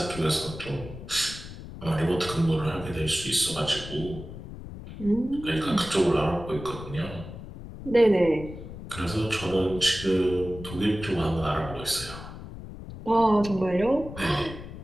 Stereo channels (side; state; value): left; noise; rumble, 12 dB below the sound